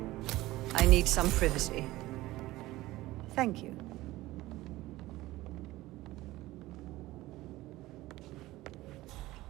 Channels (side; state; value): left; quieter; 17.7 dB